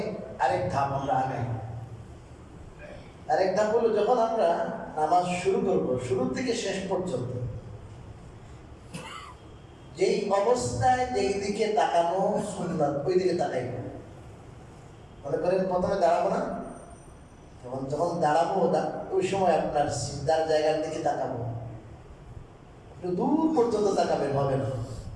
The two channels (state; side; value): identical; both; correlation 1.00